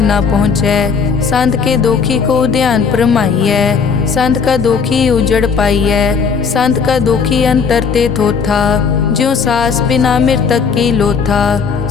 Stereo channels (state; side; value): quieter; right; 5.8 dB